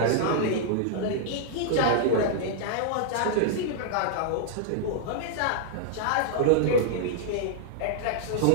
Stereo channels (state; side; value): different; both; correlation -0.01